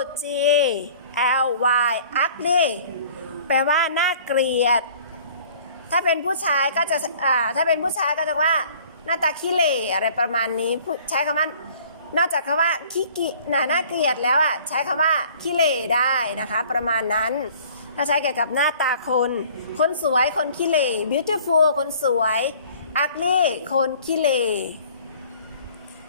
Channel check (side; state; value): both; inverted; correlation -0.52